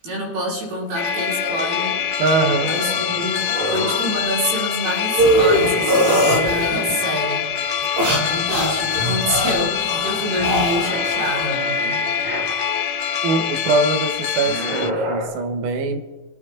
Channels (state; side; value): late; left; 18 ms